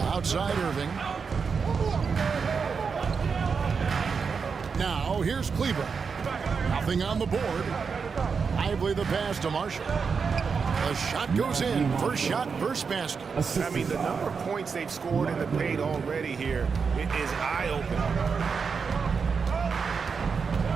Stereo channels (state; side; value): quieter; left; 5.6 dB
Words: Outside Irving. Now here's Kleber. Nothing on the board. Lively the pass to Marshall. The shot goes in. First shot, first basket. I mean, the number of points they've scored in the paint already here is eye-opening.